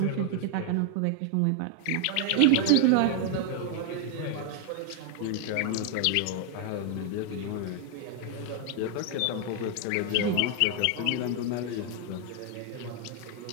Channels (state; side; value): different; both; correlation 0.00